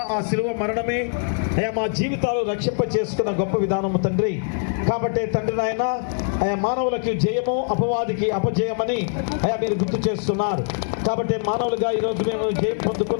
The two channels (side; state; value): right; silent; digital silence